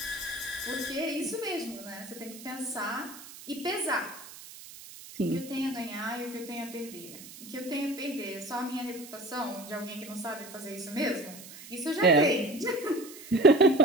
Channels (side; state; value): right; noise; hiss, 16 dB below the sound